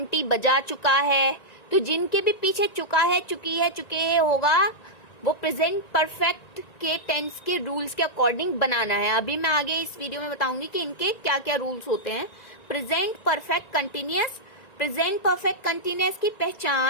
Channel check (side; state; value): right; late; 1.9 ms